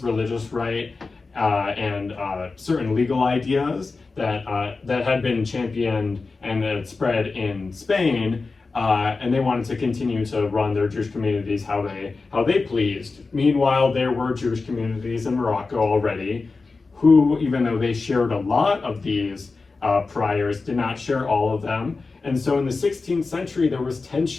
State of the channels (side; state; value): right; quieter; 4.0 dB